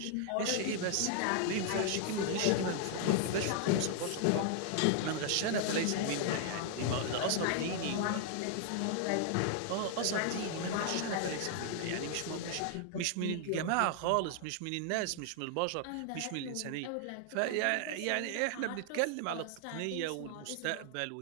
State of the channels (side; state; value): both; different; correlation 0.00